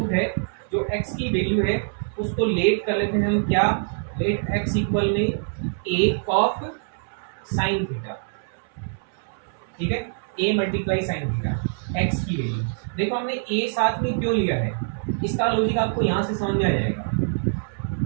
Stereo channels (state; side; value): silent; left; 62 dB below the other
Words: है, जो x की वैल्यू है उसको लेट कर लेते हैं हम क्या, लेट x इक्वल में a कॉफ साइन थीटा, ठीक है, a multiply sine theta x की वैल्यू। देखो हमने a साथ में क्यों लिया है, इसका लॉजिक आपको यहाँ से समझ में आ जाएगा।